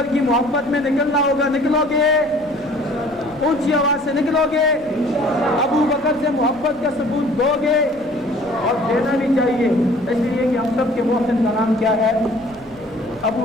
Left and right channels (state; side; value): noise; left; rumble, 28 dB below the sound